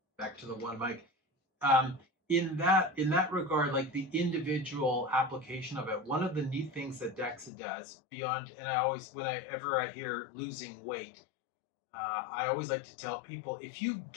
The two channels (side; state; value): right; drops out; at 7.5 s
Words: Back to the one mic. In that regard, like the individual application of it, one of the neat things that DEXA does beyond, and I always, whenever I hear losing weight, I always like to tell people, if you